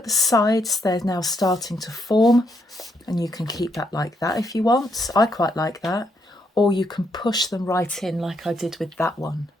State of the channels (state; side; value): normal; both; correlation 0.76